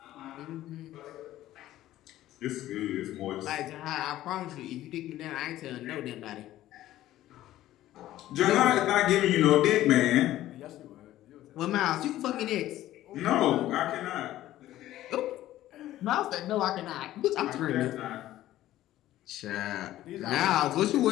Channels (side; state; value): right; quieter; 14.2 dB